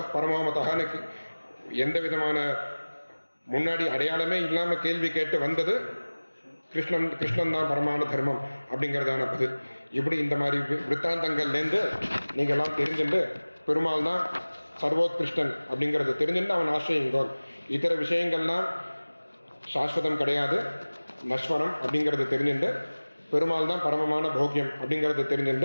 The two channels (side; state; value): both; inverted; correlation -1.00